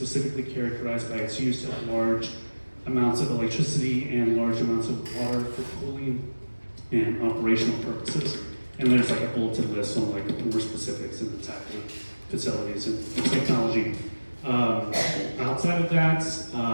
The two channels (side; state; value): both; inverted; correlation -1.00